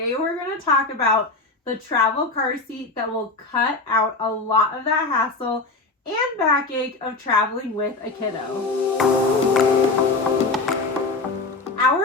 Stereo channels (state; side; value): quieter; right; 3.4 dB